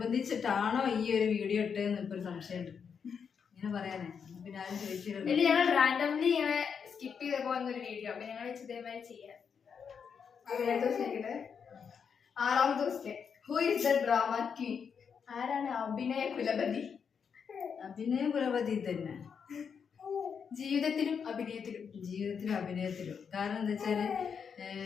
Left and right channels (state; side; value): quieter; right; 6.7 dB